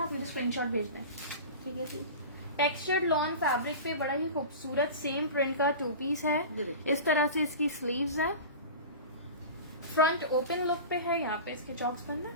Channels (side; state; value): both; inverted; correlation -0.32